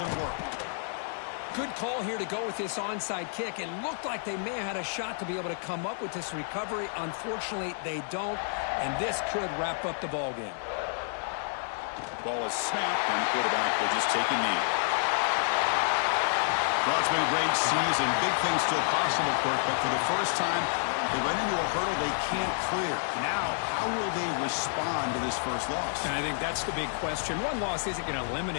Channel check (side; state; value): right; silent; digital silence